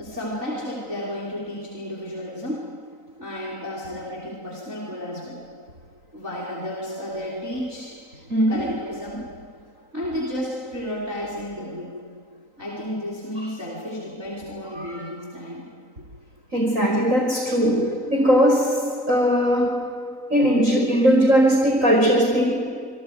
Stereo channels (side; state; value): left; late; 3.9 ms